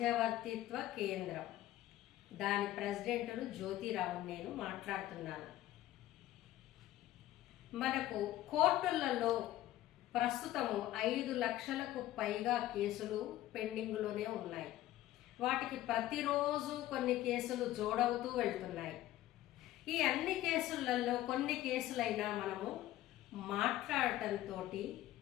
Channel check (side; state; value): right; quieter; 14.5 dB